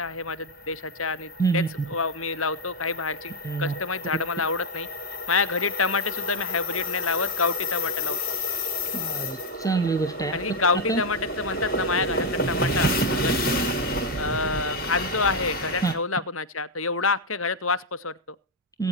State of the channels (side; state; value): both; normal; correlation 0.02